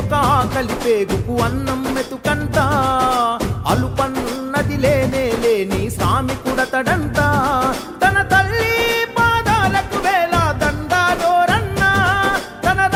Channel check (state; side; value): identical; both; correlation 1.00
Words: ఆకలి పేగుకు అన్నం మెతుకంట, అలుపన్నది లేనే లేని శ్రామికుడతడంట. తన తల్లి పాదాలకు వేల దండాలోరన్నా, తన